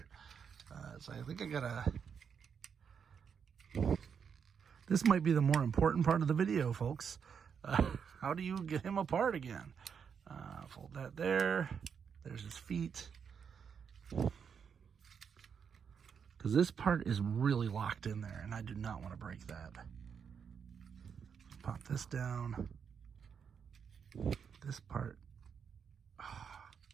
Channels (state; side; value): quieter; left; 6.9 dB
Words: So I think I gotta. This might be the more important part of the video, folks. How do you get him apart again? Fold that there. There's his feet. Because this part is really locked in there, and I do not want to break that. Pop this down. This part. Oh.